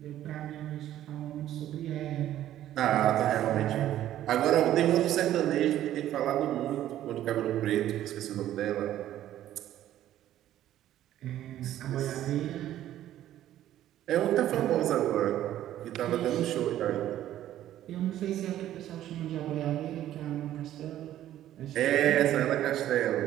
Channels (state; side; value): quieter; left; 12.6 dB